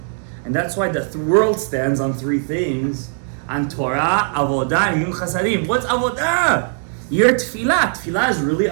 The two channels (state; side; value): silent; left; 66 dB below the other